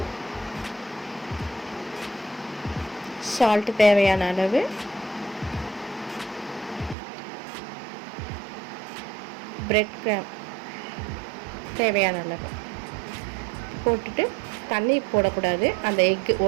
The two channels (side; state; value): left; drops out; at 7.0 s